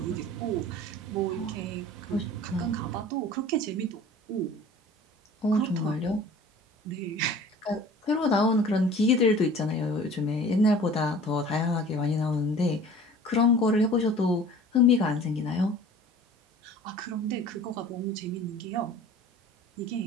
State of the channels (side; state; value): both; normal; correlation 0.45